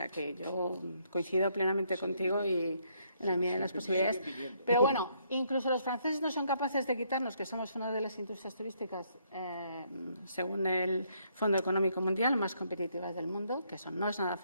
que yo coincido plenamente contigo y en la medida de las posibilidades. Pero bueno, incluso los franceses no son capaces de quitarnos que somos una de las industrias turísticas, según el Fondo Económico Mundial, más competitivas del mundo, que eso no es nada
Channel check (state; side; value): inverted; both; correlation -0.71